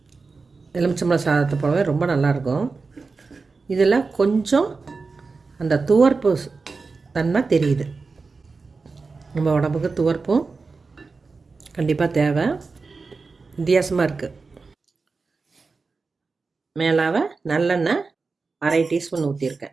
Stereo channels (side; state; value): left; quieter; 4.3 dB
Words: எலுமிச்சம்பழம் சாதத்தை போலவே ரொம்ப நல்லாயிருக்கும். இதில் கொஞ்சம் அந்த துவர்ப்பு தன்மை தெரியுது. நம்ம உடம்புக்கு துவர்ப்பும் கண்டிப்பாக தேவை. வித்தியாசமாக இருக்குது. மேலாக நல்லெண்ணெய் 1/2 டீஸ்பூன்